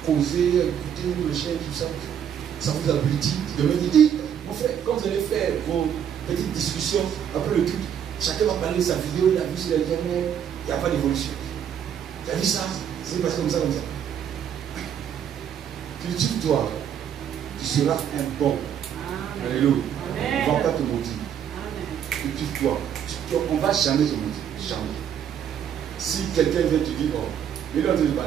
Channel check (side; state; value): left; quieter; 8.9 dB